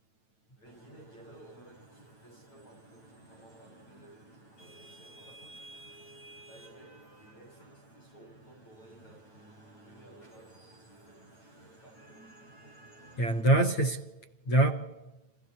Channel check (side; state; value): right; late; 9.1 ms